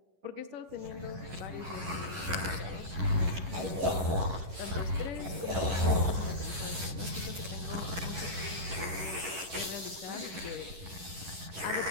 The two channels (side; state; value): left; late; 11 ms